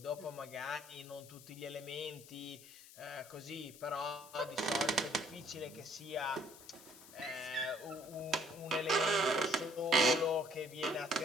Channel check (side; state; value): left; noise; hiss, 18 dB below the sound